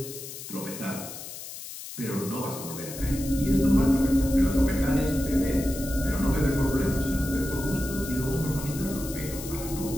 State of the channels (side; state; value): left; noise; hiss, 11 dB below the sound